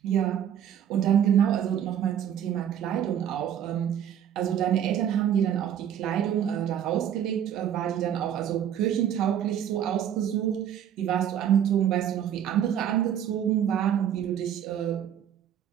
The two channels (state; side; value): quieter; left; 9.7 dB